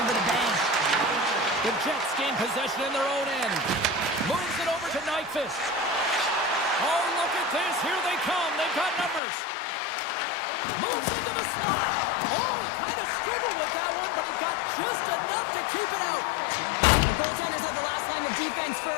with a bang. The Jets gain possession in their own end. Moves it over to Nyquist. Oh, look at this. Here they come. They've got numbers. Moves into the slot. Oh, he kind of struggled with that one, but he got just enough to keep it out. The goaltenders are the last line of defense for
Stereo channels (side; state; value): right; drops out; at 9.2 s